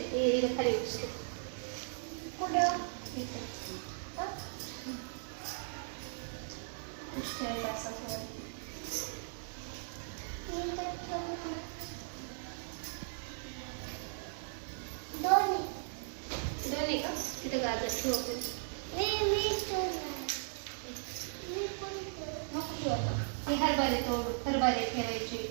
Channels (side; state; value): left; silent; digital silence